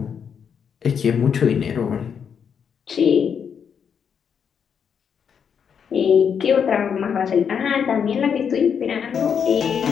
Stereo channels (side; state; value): right; quieter; 7.2 dB